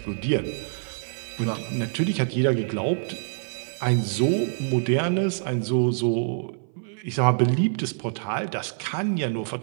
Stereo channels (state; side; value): silent; left; 58 dB below the other